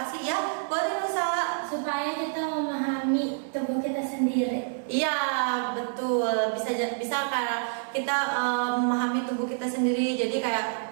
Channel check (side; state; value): left; silent; 60 dB below the other